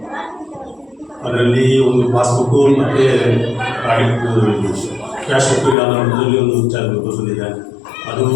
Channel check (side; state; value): right; drops out; at 5.8 s